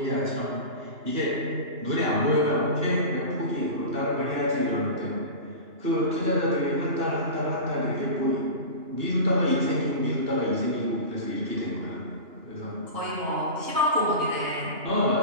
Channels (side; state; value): left; late; 2.9 ms